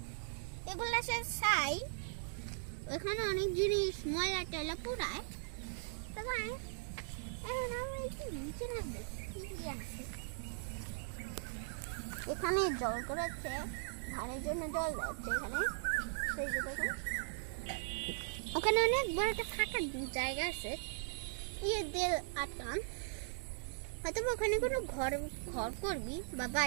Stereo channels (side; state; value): left; silent; digital silence